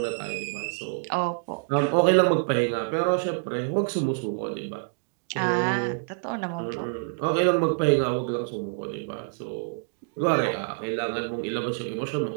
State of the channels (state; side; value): silent; left; digital silence